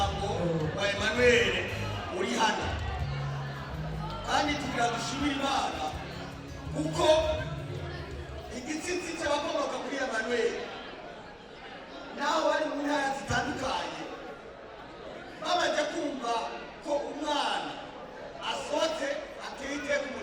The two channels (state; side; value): identical; both; correlation 1.00